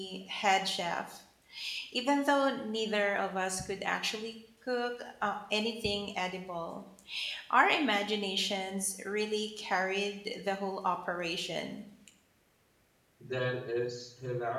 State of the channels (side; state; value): both; identical; correlation 1.00